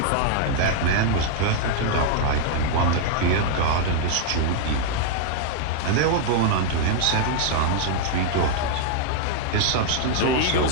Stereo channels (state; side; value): different; both; correlation -0.01